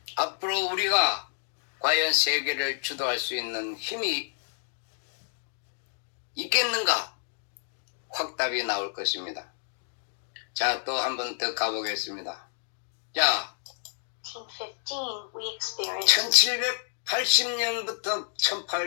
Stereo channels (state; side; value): silent; right; digital silence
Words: 앞으로 우리가 과연 세계를 주도할 수 있는 힘이 있겠는가? 확답이 나올 것입니다. 자, 또 한 번 더 가보겠습니다. 자, 1915, we experienced 1780년부터